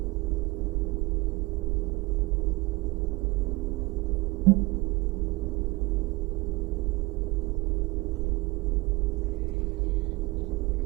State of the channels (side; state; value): left; quieter; 23.5 dB